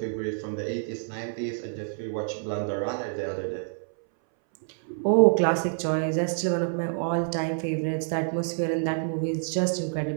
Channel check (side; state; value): left; silent; 60 dB below the other